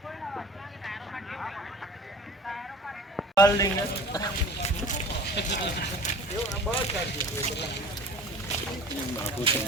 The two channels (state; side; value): normal; both; correlation 0.42